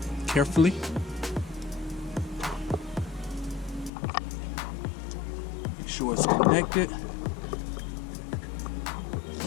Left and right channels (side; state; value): right; drops out; at 3.9 s